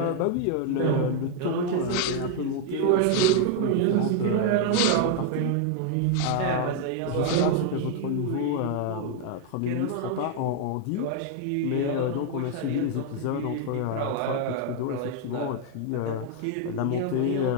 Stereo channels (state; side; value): different; both; correlation 0.00